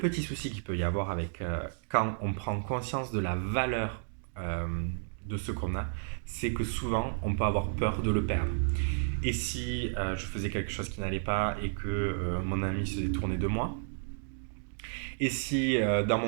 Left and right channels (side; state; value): left; silent; digital silence